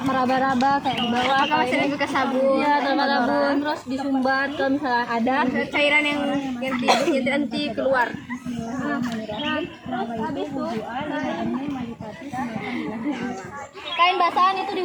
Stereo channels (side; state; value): both; identical; correlation 1.00